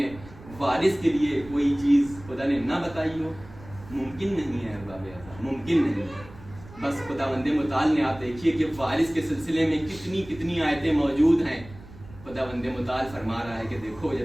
وارث کے لیے کوئی چیز خدا نے نہ بتائی ہو؟ ممکن نہیں ہے ارباب ازا، ممکن نہیں. بس خدا بند متعال نے، آپ دیکھیے کہ وارث کے سلسلے میں کتنی آیتیں موجود ہیں. خدا بند متعال فرما رہا ہے کہ دیکھو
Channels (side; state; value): right; noise; rumble, 19 dB below the sound